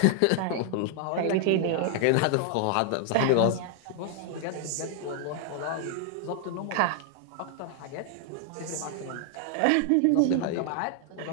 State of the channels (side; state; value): both; different; correlation 0.00